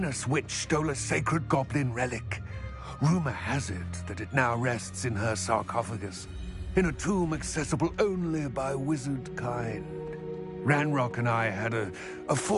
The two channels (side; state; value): both; identical; correlation 1.00